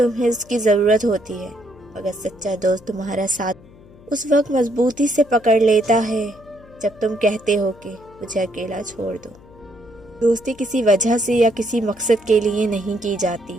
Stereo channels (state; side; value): noise; left; hum, 24 dB below the sound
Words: اس کی ضرورت ہوتی ہے، مگر سچا دوست تمہارا ساتھ اس وقت مضبوطی سے پکڑ لیتا ہے جب تم کہتے ہو کہ مجھے اکیلا چھوڑ دو۔ دوستی کسی وجہ سے یا کسی مقصد کے لیے نہیں کی جاتی،